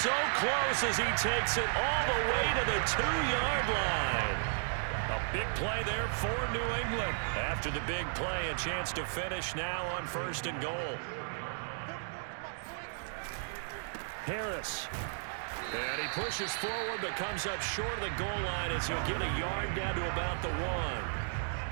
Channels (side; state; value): left; silent; digital silence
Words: so close as he takes it all the way to the 2-yard line. A big play there for New England. After the big play, a chance to finish now on 1st and goal. Harris. And he pushes forward but comes up short of the goal line as he'll get a yard down to about the 1.